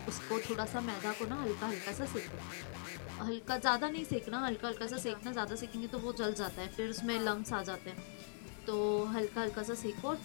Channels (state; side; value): silent; right; digital silence